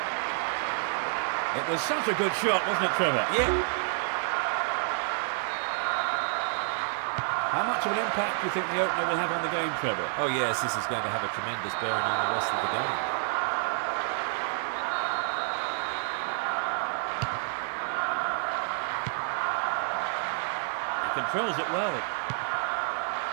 It was such a good shot, wasn't it, Trevor? Yeah. How much of an impact do you think the opener will have on the game, Trevor? Oh yes, this is going to have a tremendous bearing on the rest of the game. He controls it well.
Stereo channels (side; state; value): left; silent; 59 dB below the other